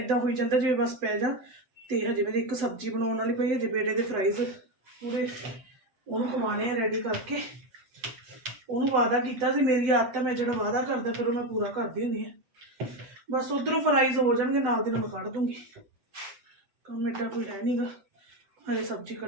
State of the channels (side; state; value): left; late; 7.8 ms